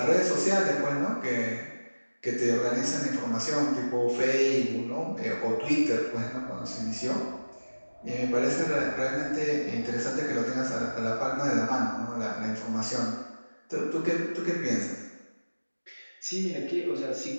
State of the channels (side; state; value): both; inverted; correlation -1.00